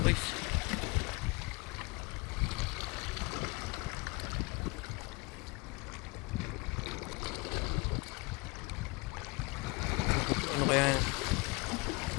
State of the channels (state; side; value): quieter; right; 27.4 dB